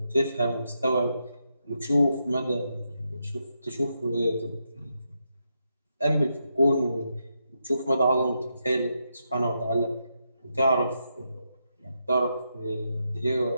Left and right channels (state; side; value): inverted; both; correlation -0.83